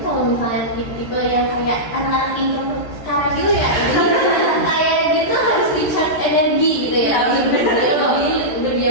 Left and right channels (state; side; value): late; right; 13 ms